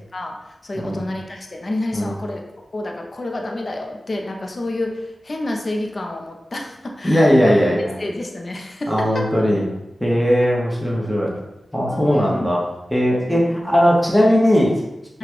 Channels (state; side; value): normal; both; correlation 0.95